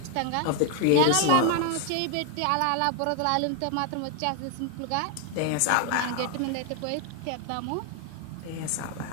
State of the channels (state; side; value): different; both; correlation 0.00